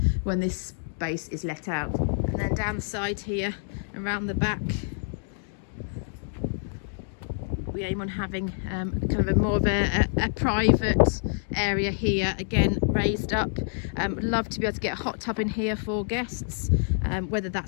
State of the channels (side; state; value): right; silent; digital silence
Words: when this space is let out. And then down the side here, around the back, we aim on having kind of a more of a private area here, again raised up. Would love to be able to get a hot tub in here for guests. Whether